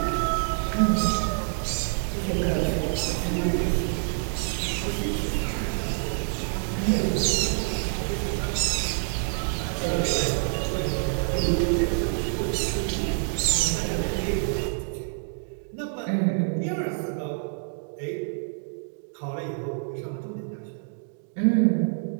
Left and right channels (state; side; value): silent; left; digital silence